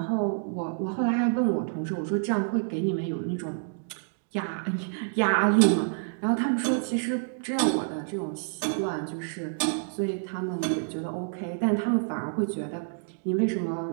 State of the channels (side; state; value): left; silent; digital silence